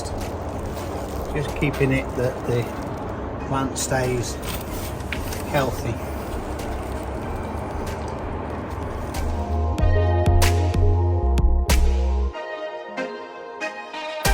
Just keeping it that the plant stays healthy.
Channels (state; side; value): identical; both; correlation 1.00